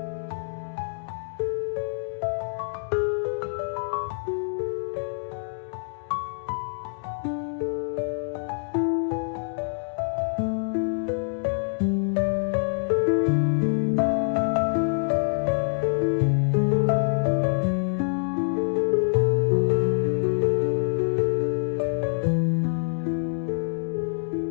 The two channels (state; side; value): silent; right; digital silence